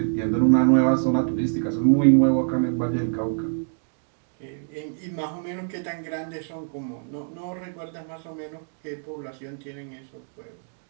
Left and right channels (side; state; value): left; silent; digital silence